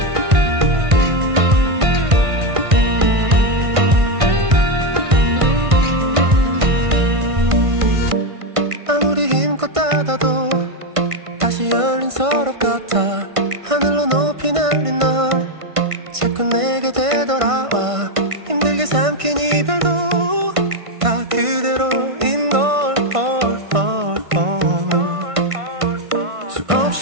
아무리 힘껏 닫아도 다시 열린 서랍 같아 하늘로 높이 날린 널 자꾸 내게 되돌아와 힘들게 삼킨 이별도 다 그대로인 걸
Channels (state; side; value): late; left; 1.5 ms